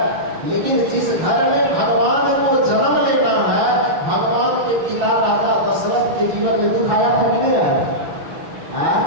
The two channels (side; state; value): left; late; 6.0 ms